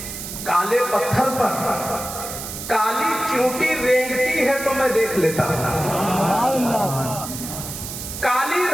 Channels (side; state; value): right; noise; hiss, 8 dB below the sound